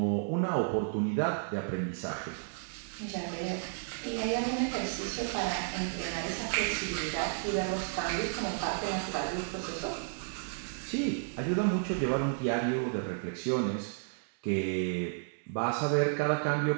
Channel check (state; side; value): silent; left; digital silence